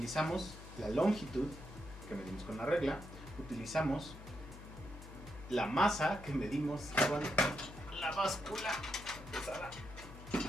la longitud, que medimos con la regla, utilizamos la masa, que medimos con la báscula pesada,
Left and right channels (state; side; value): noise; left; hum, 14 dB below the sound